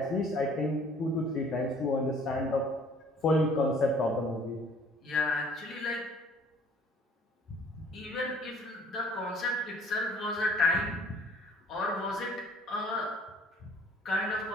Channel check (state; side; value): normal; both; correlation 0.54